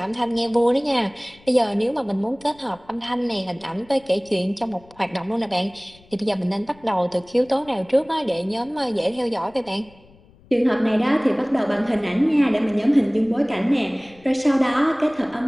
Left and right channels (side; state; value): left; noise; rumble, 27 dB below the sound